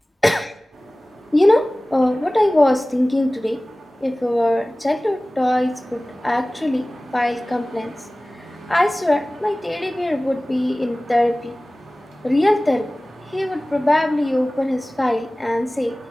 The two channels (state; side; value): normal; both; correlation 0.98